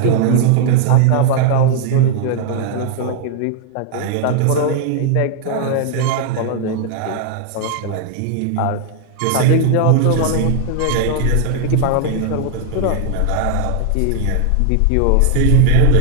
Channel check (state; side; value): different; both; correlation 0.00